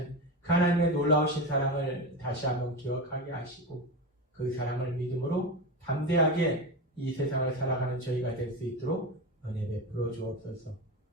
그 하나님의 놀라우신 사랑을 다시 한번 기억하게 하시고 그 사랑을 믿음으로 담대하게 이 세상을 살아가는 저희가 될 수 있도록 은혜 베풀어 주옵소서.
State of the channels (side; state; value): both; normal; correlation 0.21